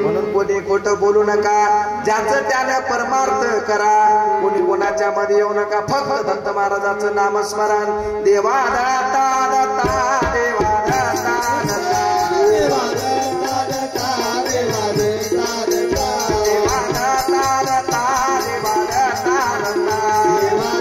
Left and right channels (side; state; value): both; identical; correlation 1.00